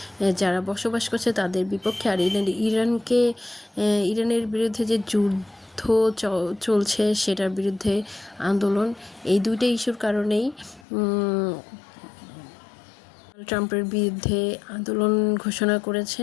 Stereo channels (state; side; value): drops out; right; at 10.9 s